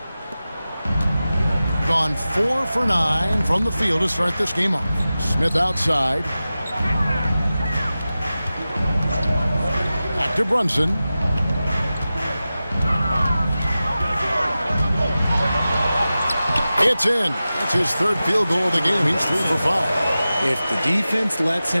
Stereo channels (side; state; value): both; inverted; correlation -0.95